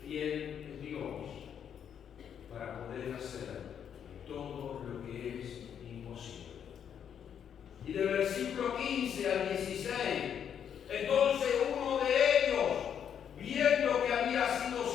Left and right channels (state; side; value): quieter; right; 8.5 dB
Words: Fiel es Dios para poder hacer todo lo que es imposible. Y del versículo 15 al 16, entonces uno de ellos, viendo que había sido